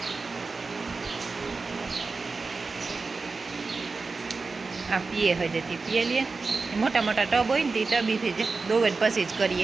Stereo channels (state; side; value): quieter; left; 4.1 dB